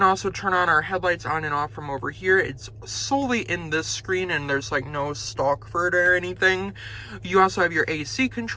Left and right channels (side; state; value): both; identical; correlation 1.00